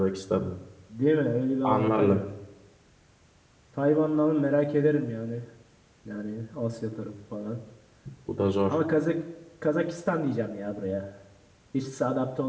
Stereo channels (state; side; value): identical; both; correlation 1.00